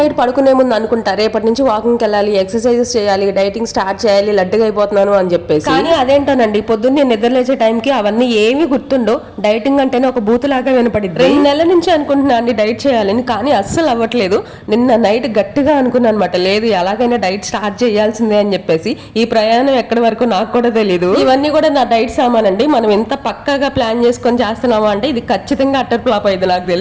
పడుకునే ముందు అనుకుంటా రేపటి నుంచి వాకింగ్కి వెళ్ళాలి, ఎక్సర్సైజెస్ చేయాలి, డైటింగ్ స్టార్ట్ చేయాలి, లడ్డుగా అయిపోతున్నాను అని చెప్పేసి. కానీ అదేంటోనండి పొద్దున్నే నిద్ర లేచే టైంకి అవన్నీ ఏమీ గుర్తుండో. డైటింగ్ అంటేనే ఒక బూతులాగా వినపడింది. 2 నెలల నుంచి అనుకుంటున్నా అండి డైట్ చేయాలని, కానీ అస్సలు అవ్వట్లేదు. నిన్న నైట్ గట్టిగా అనుకున్నాను అనమాట, లేదు ఎలాగైనా డైట్ స్టార్ట్ చేయాల్సిందే అని చెప్పేసి. ఈ ప్రయాణం ఎక్కడి వరకు నాకు కూడా తెలియదు. ఇవన్నీ కూడా నా డైట్ సామాన్ అండి. మనం ఎంత పక్కాగా ప్లాన్ చేసుకొని చేస్తున్నామా అంటే ఇది ఖచ్చితంగా అట్టర్ ఫ్లాప్ అయింది నాకు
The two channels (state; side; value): identical; both; correlation 1.00